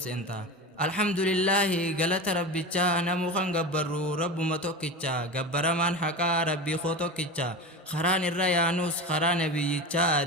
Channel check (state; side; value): normal; both; correlation 0.27